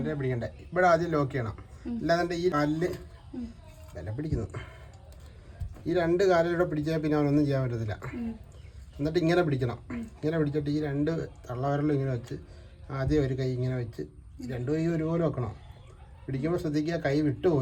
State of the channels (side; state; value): both; identical; correlation 1.00